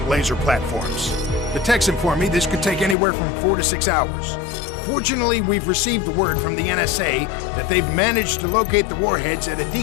laser platforms. The techs inform me this could take anywhere from 4 to 6 hours. Fortunately, we've received word from the NSA that they've managed to locate the warheads at a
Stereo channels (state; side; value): drops out; right; at 3.0 s